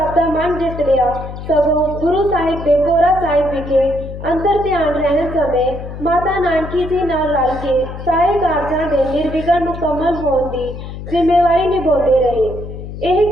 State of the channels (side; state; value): left; noise; hum, 10 dB below the sound